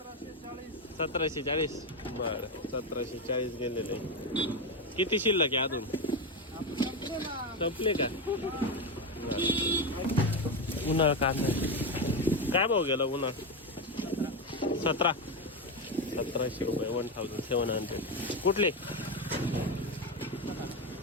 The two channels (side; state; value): both; normal; correlation 0.12